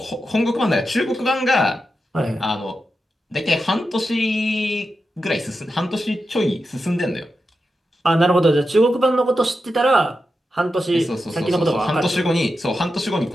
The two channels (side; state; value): both; normal; correlation 0.89